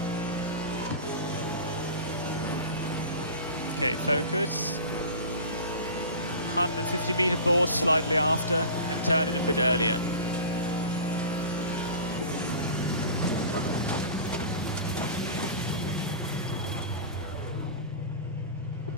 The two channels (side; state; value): both; inverted; correlation -0.35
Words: Okay, focus. 150 meter board slightly after and turn in a bit earlier.